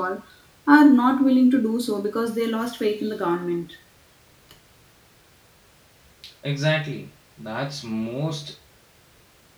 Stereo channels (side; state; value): both; identical; correlation 1.00